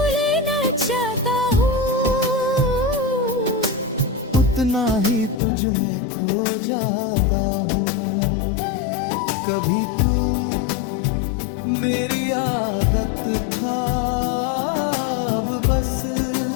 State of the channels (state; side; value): drops out; right; at 5.4 s